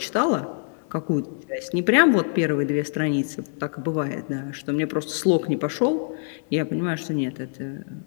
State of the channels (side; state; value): right; silent; digital silence